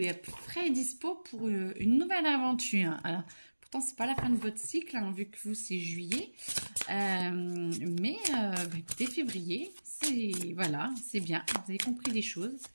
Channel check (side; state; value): both; inverted; correlation -1.00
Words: prêt et dispo pour une nouvelle aventure. Alors, pourtant, c'est pas la fin de votre cycle, hein, vu que vous, c'est juillet. Mais écoutez, février, c'est voilà, c'est bien. Vous avez compris des choses.